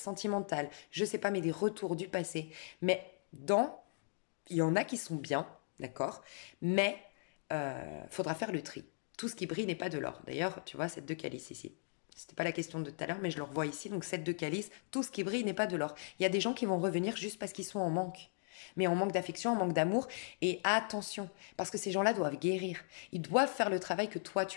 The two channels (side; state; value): right; silent; digital silence